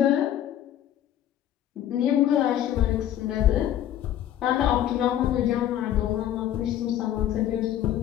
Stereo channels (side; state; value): right; quieter; 11.4 dB